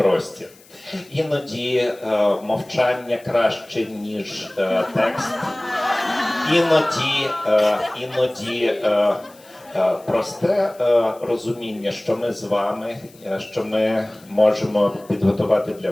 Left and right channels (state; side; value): noise; left; hiss, 26 dB below the sound